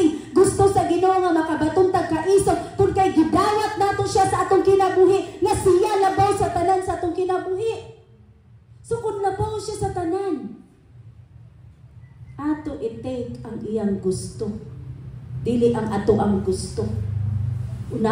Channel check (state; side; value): identical; both; correlation 1.00